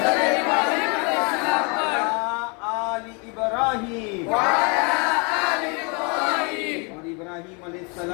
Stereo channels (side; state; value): right; quieter; 33.4 dB